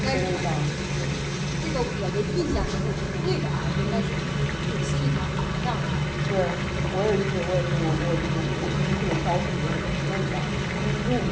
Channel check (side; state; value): both; identical; correlation 1.00